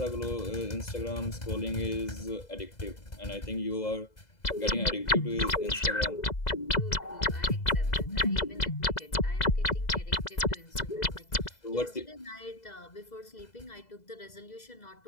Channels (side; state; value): right; late; 2.0 ms